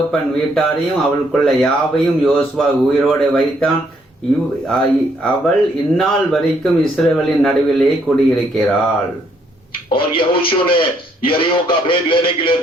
வீட்டாரையும் அவளுக்குள்ள யாவையும் யோசுவா உயிரோடு வைத்தான். அவள் இந்நாள் வரைக்கும் இஸ்ரவேலின் நடுவிலே குடியிருக்கிறாள். और यहोशू ने यरीहो का भेद लेने के लिए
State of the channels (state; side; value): normal; both; correlation 0.70